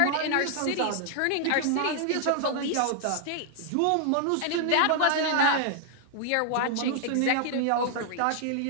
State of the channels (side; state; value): both; different; correlation 0.00